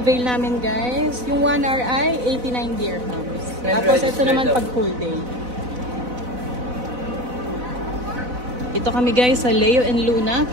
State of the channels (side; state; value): left; late; 4.0 ms